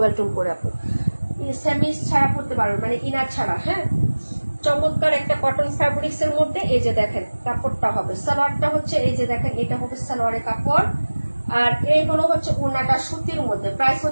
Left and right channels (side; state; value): both; inverted; correlation -1.00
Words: টোন করে আপু। সেমিস ছাড়া পড়তে পারবে, মানে ইনার ছাড়া। হ্যাঁ, চমৎকার একটা কটন ফ্যাব্রিক্স এর মধ্যে। এই যে দেখেন কাপড়টা হবে, সালোয়ারটা হচ্ছে এই যে দেখেন, এটা হবে সালোয়ারের কাপড়। আর এই হলো হচ্ছে ওড়নাটা সুতির মধ্যে, প্রাইস